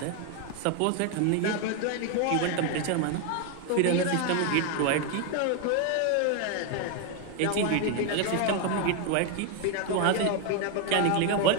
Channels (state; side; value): different; both; correlation 0.01